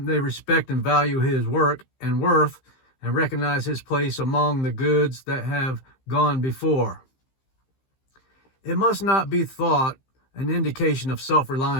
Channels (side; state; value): right; late; 15 ms